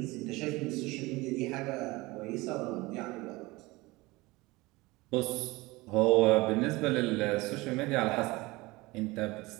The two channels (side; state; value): left; quieter; 21.9 dB